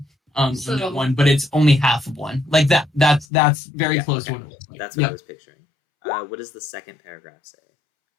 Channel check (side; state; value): right; drops out; at 3.2 s